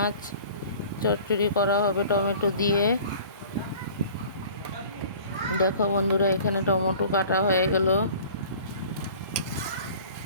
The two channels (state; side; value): inverted; both; correlation -0.46